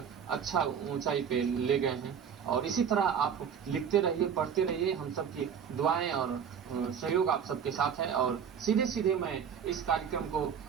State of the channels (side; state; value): left; quieter; 7.7 dB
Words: अच्छा ऊंचाई पे ले गए हैं और इसी तरह आप लिखते रहिए, पढ़ते रहिए। हम सबकी दुआएं और सहयोग आप सबके साथ है और सीधे सीधे मैं इस कार्यक्रम को